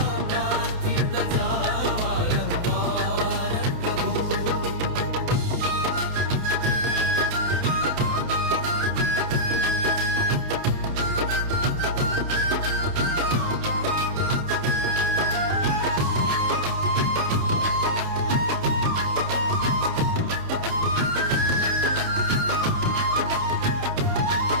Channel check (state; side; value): late; left; 28 ms